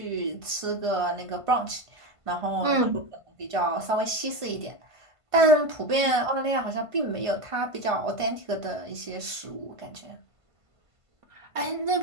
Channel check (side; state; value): left; late; 1.5 ms